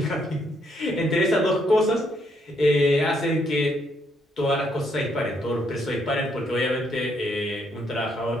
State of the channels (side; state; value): both; normal; correlation 0.73